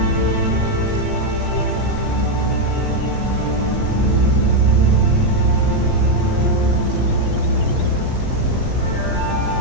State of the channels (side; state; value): right; late; 17 ms